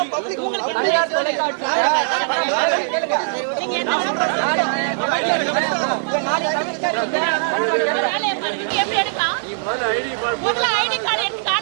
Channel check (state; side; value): silent; left; 66 dB below the other